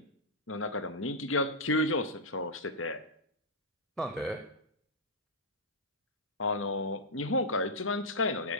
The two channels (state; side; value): normal; both; correlation -0.10